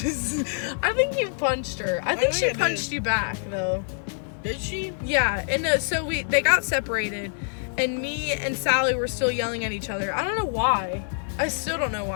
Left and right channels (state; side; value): silent; right; 61 dB below the other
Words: I think you punched her. I think she punched you back though. Did she? Yeah, and so they got separated, and me and Sally were still yelling at each other. I don't know why. I still don't know